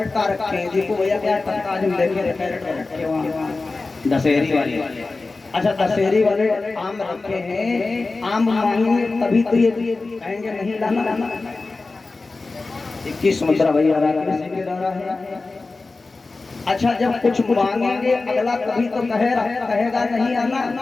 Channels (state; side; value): quieter; right; 3.6 dB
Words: रखे हैं, देखो भैया क्या टक्का जो लेके कैरेट भर रखे वहाँ दशहरी वाले। अच्छा दशहरी वाले आम रखे हैं, आम मांगेंगे तभी तो ये कहेंगे नहीं लाना। 21 मुद्रा भैया है। अच्छा जब कुछ मांगेंगे अगला कभी तो कहेगा नहीं आना।